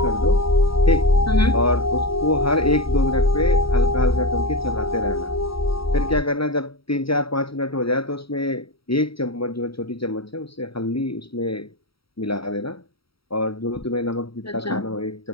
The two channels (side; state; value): right; late; 0.75 ms